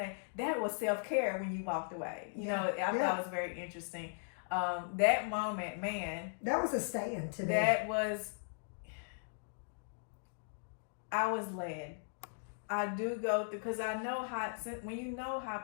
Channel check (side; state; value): right; silent; digital silence